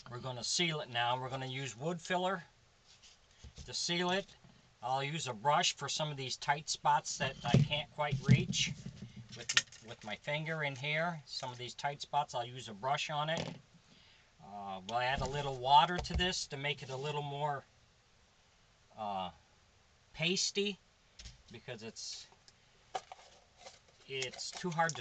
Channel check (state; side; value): identical; both; correlation 1.00